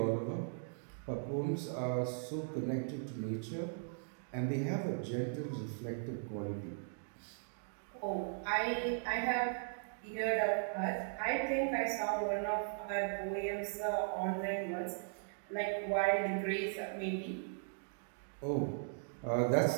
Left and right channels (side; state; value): left; silent; digital silence